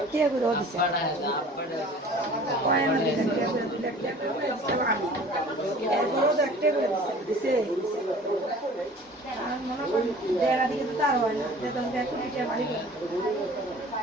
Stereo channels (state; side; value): normal; both; correlation 0.46